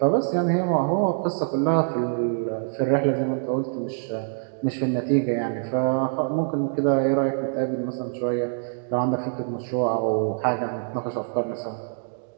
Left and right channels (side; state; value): left; silent; digital silence